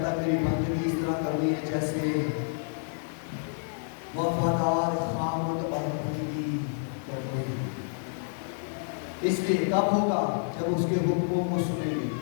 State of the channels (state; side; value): silent; right; digital silence